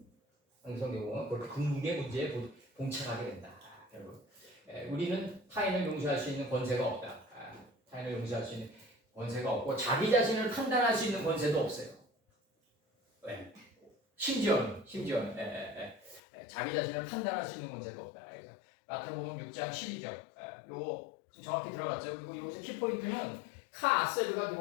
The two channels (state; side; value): drops out; right; at 16.2 s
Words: 그렇게 궁극의 문제에 봉착하게 된다. 결국 우리는 타인을 용서할 수 있는 권세가 없다. 타인을 용서할 수 있는 권세가 없고 자기 자신을 판단할 수 있는 권세도 없어요. 왜? 심지어는 자기 자신을 판단할 수 있는 권세도 없다. 그래서 마태복음 6장 12절 요거 정확히 들어갔죠. 그리고 여기서 키포인트는 카아세르가